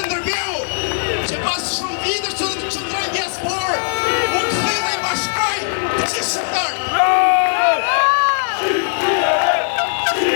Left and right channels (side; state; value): right; silent; 67 dB below the other